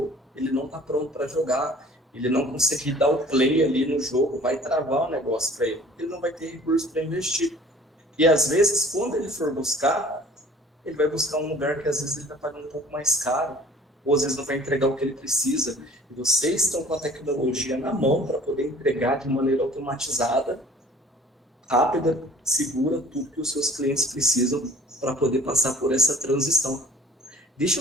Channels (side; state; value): both; normal; correlation 0.50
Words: ele não está pronto para jogar, ele não conseguir dar o play ali no jogo, vai travar o negócio para ele não vai ter recurso para investir. E às vezes, quando ele for buscar, ele vai buscar um lugar que às vezes ele está pagando um pouco mais caro, ou às vezes não vai entregar o que ele precisa. E vocês estão com a tecnologia na mão para poder entregar de maneira automatizada, rápida, segura, tudo que os seus clientes precisam para poder passar por essa transição.